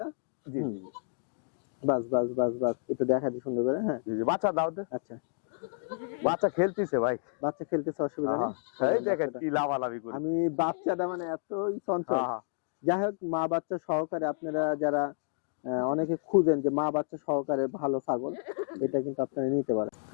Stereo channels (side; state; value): right; silent; digital silence